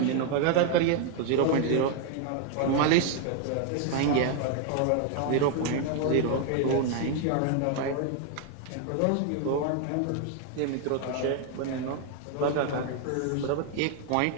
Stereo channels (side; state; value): both; different; correlation 0.00